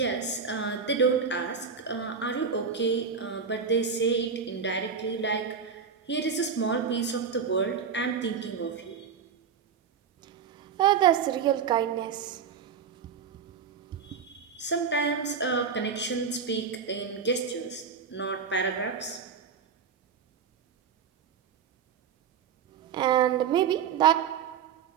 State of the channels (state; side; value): quieter; left; 6.5 dB